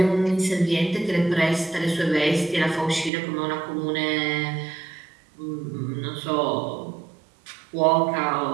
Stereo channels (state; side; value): drops out; left; at 3.1 s